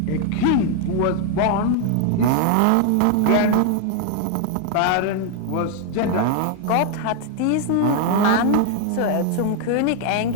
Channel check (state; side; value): different; both; correlation 0.01